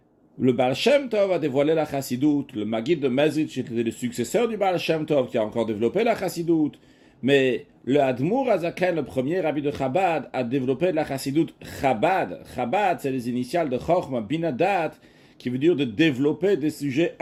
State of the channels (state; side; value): identical; both; correlation 1.00